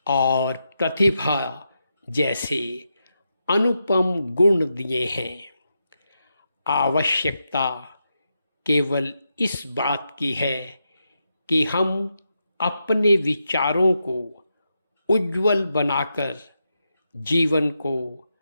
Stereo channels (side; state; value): both; inverted; correlation -0.85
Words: और प्रतिभा जैसे अनुपम गुण दिए हैं। आवश्यकता केवल इस बात की है कि हम अपने विचारों को उज्जवल बनाकर जीवन को